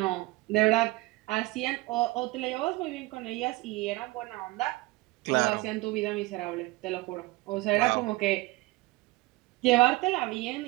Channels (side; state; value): left; quieter; 20.9 dB